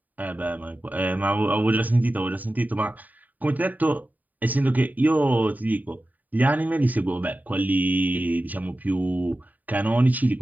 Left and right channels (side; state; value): left; late; 0.082 ms